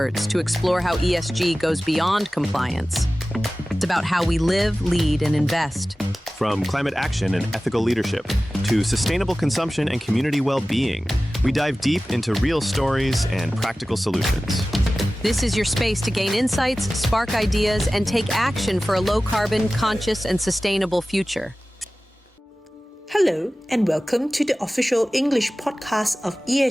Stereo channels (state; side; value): normal; both; correlation 0.97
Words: to explore how ESG goes beyond compliance. It's about how we live, lead, and invest. From climate action and ethical leadership to sustainable consumption and community well-being, we dive deep into real stories and practical solutions. This is your space to gain insights, spark ideas, and take action for a low-carbon, conscious, and sustainable future. Hello, and welcome to the official English podcast of